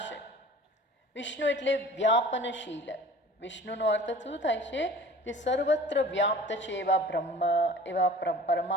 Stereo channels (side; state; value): both; normal; correlation 0.44